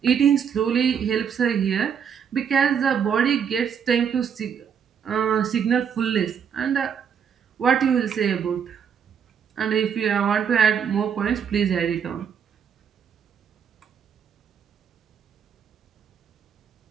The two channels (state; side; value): quieter; left; 7.6 dB